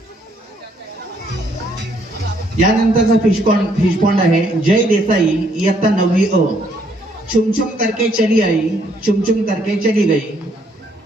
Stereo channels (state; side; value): normal; both; correlation 0.68